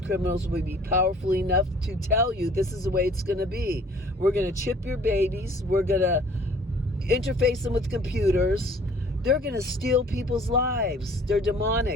criminals will be powerful enough to tell you this is the way it's going to be. We're going to chip your babies. We're going to interface them with computers. They're going to steal people's lives. They're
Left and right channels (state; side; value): normal; both; correlation 0.54